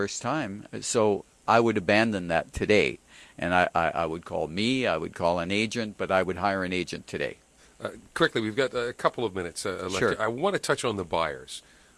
time. So I would abandon that today. And I would call I would call an agent, but I would hire an agent today. Quickly, we've got a couple of minutes left. Sure. I want to touch on the buyers.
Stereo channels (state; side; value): identical; both; correlation 1.00